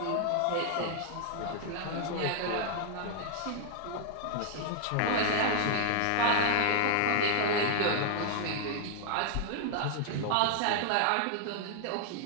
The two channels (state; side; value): different; both; correlation 0.00